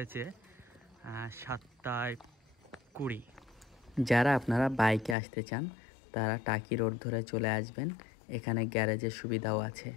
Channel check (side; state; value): right; drops out; at 5.2 s